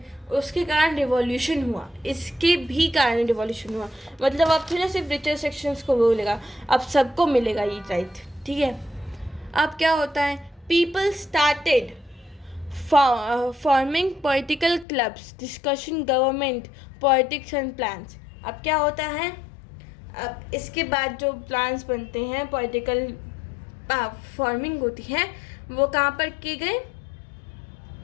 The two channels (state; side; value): drops out; right; at 14.9 s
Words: उसके कारण रिवॉल्यूशन हुआ, इसके भी कारण रिवॉल्यूशन हुआ। मतलब अब तो ना सिर्फ रिचर सेक्शंस को बोलेगा, अब सबको मिलेगा ये राइट, ठीक है। अब क्या होता है, people started forming political clubs, discussion government politics and plans. अब क्या होता है, अब इसके बाद जो प्लान्स बनते हैं, पॉलिटिकल फॉर्मिंग होती है, वो कहाँ पर किए गए,